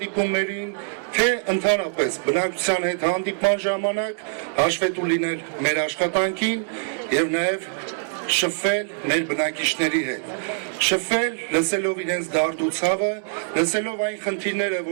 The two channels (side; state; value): left; silent; digital silence